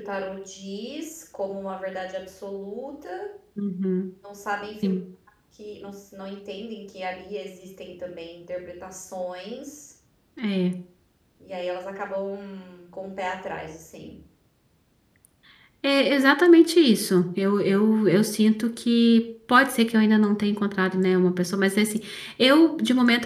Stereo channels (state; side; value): identical; both; correlation 1.00